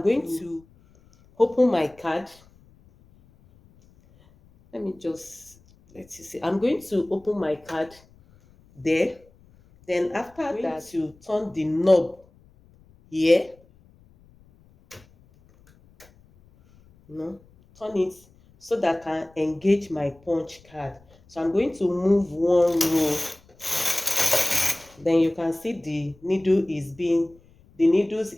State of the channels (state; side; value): noise; left; rumble, 29 dB below the sound